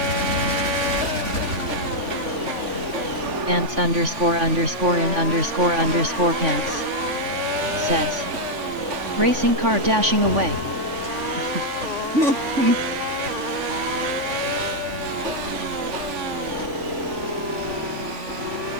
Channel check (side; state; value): left; late; 3.5 ms